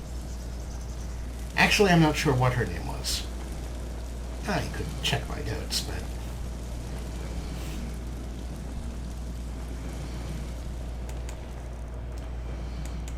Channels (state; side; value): identical; both; correlation 1.00